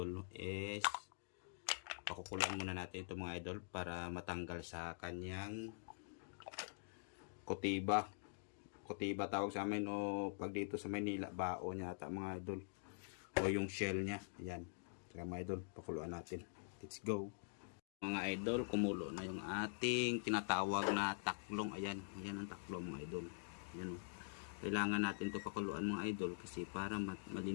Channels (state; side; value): silent; right; digital silence